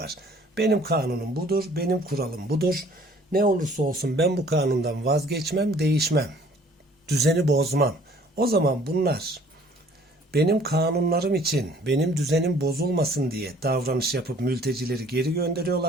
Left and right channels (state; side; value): normal; both; correlation 0.56